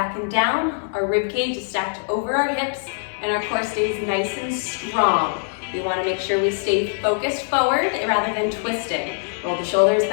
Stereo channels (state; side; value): silent; right; digital silence